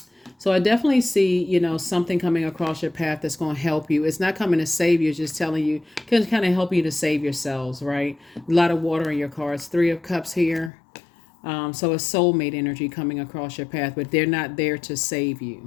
So I definitely see, something coming across your path that's going to help you. It's not coming to save you, it's just telling you, can kind of help you to save yourselves, right? A lot of water in your cards. Three of Cups here. So a soulmate energy coming across your path, but they're not there to save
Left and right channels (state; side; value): drops out; right; at 10.7 s